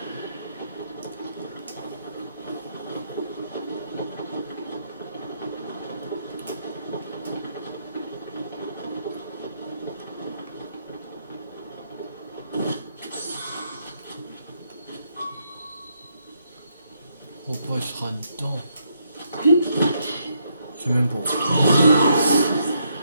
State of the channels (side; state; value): both; inverted; correlation -0.76